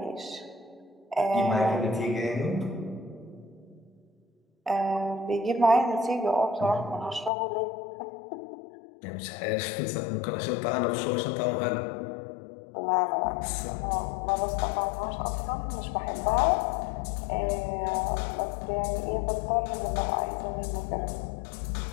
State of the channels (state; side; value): drops out; right; at 7.3 s